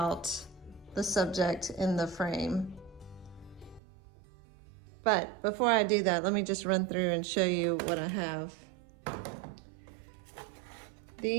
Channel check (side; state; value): left; drops out; at 3.8 s